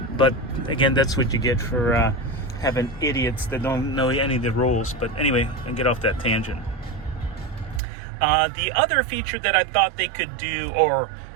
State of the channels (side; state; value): left; drops out; at 7.8 s